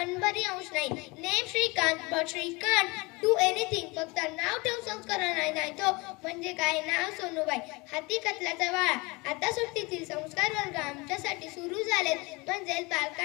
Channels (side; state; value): right; quieter; 25.6 dB